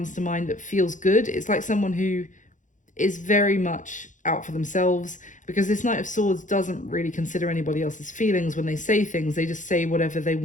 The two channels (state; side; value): late; right; 0.37 ms